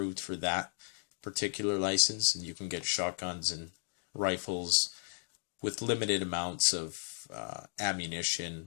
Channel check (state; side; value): silent; right; digital silence